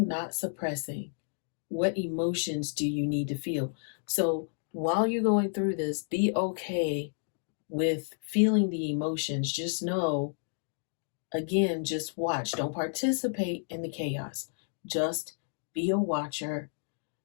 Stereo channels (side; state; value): right; silent; digital silence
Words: not suppressing. What emotions do you need to feel? So, while you're going through this, be okay with feeling the emotions. Just know, again, just watch. Don't participate in the chaos. Just be a watcher.